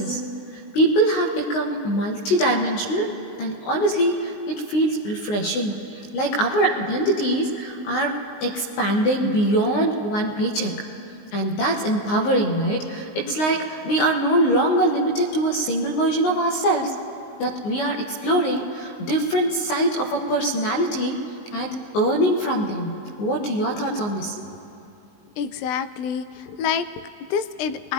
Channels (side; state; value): right; late; 19 ms